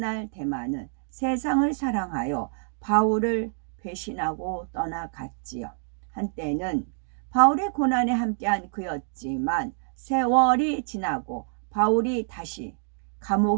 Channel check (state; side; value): silent; left; digital silence